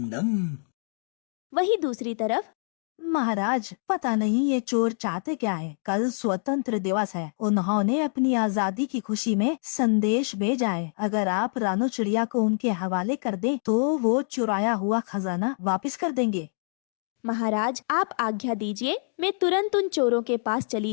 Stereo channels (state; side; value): silent; right; digital silence